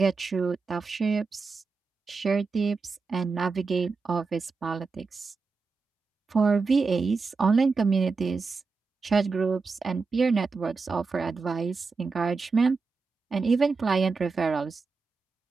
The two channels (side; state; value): left; quieter; 4.5 dB